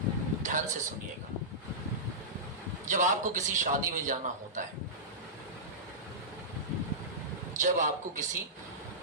ध्यान से सुनिएगा। जब आपको किसी शादी में जाना होता है, जब आपको किसी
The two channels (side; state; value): both; normal; correlation -0.16